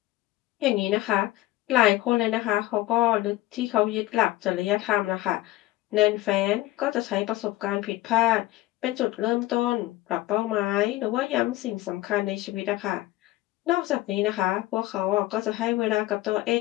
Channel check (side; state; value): right; quieter; 17.1 dB